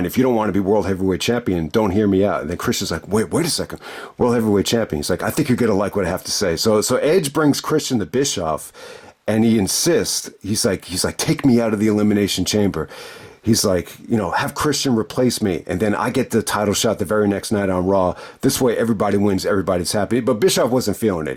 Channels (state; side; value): identical; both; correlation 1.00